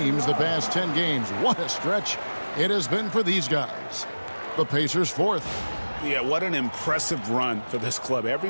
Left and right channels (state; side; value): inverted; both; correlation -1.00